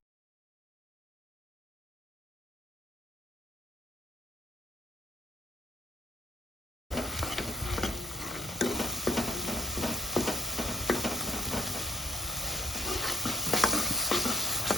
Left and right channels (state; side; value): normal; both; correlation 0.68